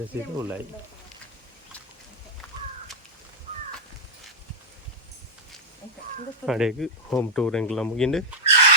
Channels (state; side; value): normal; both; correlation -0.07